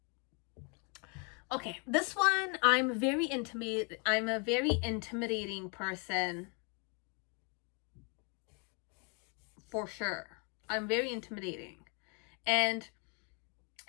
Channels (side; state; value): right; quieter; 35.7 dB